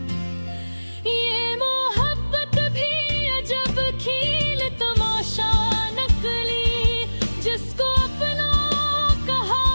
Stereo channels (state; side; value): inverted; both; correlation -1.00